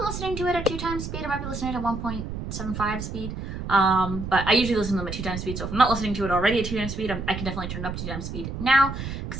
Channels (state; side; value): noise; right; rumble, 6 dB below the sound